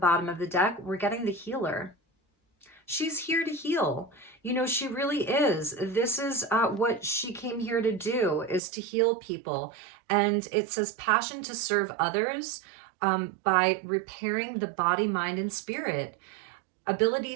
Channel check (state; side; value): drops out; left; at 8.6 s